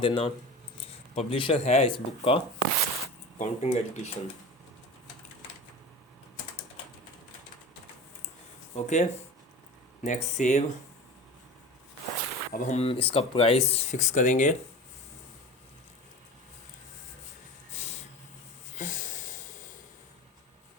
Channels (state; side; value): normal; both; correlation 0.34